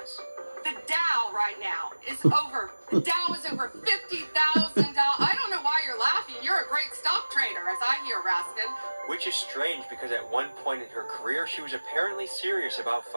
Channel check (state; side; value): inverted; both; correlation -1.00